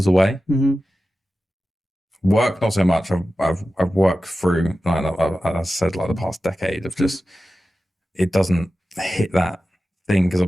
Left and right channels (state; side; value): normal; both; correlation 0.94